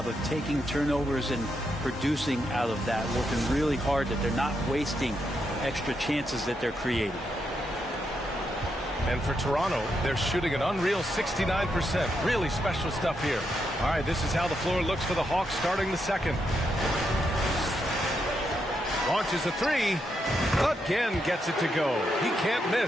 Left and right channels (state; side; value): normal; both; correlation 0.81